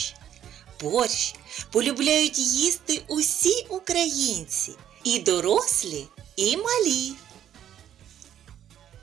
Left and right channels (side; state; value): left; quieter; 10.4 dB